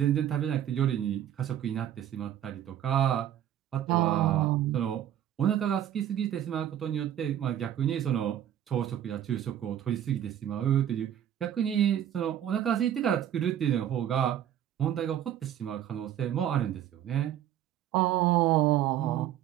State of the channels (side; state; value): left; quieter; 10.9 dB